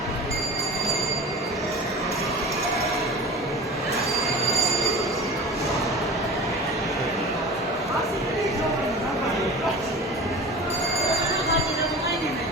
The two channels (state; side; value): normal; both; correlation 0.34